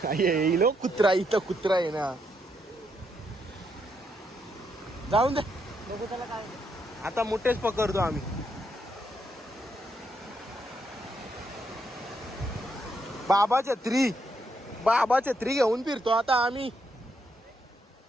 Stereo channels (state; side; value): normal; both; correlation 0.77